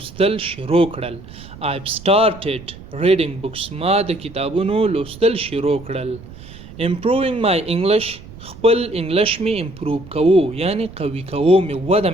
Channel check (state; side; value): noise; right; rumble, 17 dB below the sound